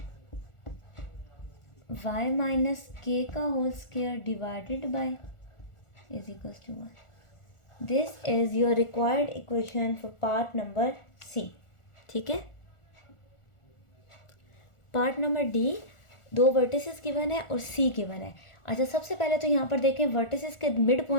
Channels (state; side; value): late; right; 1.4 ms